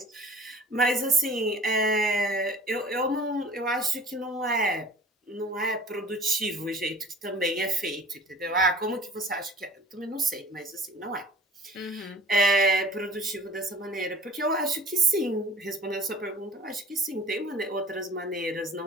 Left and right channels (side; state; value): both; normal; correlation 0.45